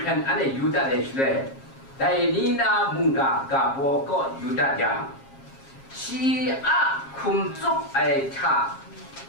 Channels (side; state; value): right; late; 7.4 ms